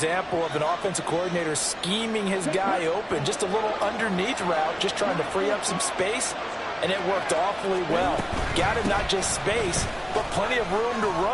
of an offensive coordinator scheming his guy open. Just a little underneath route, just trying to free up some space, and it worked awfully well. Got him not just space, but plenty of room to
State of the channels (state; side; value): identical; both; correlation 1.00